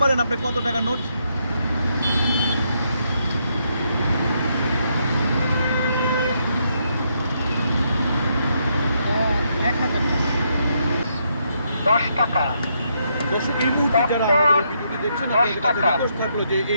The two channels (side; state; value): both; inverted; correlation -0.77